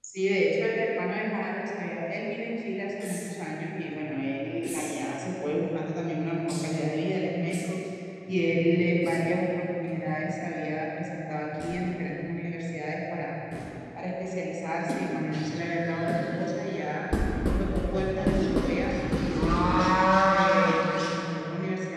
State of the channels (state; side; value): identical; both; correlation 1.00